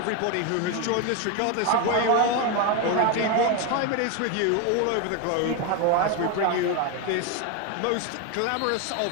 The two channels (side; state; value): both; different; correlation 0.02